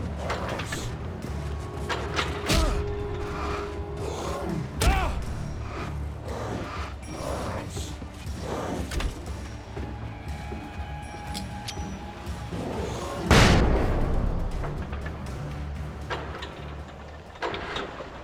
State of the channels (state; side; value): identical; both; correlation 1.00